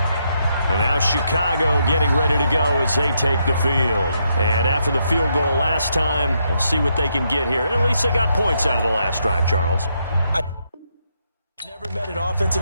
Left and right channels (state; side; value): inverted; both; correlation -0.78